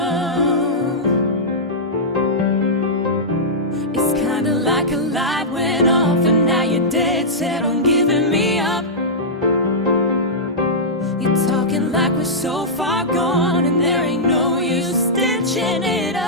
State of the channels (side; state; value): both; normal; correlation -0.12